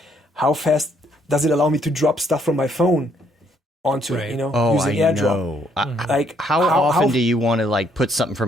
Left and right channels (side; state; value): both; normal; correlation 0.69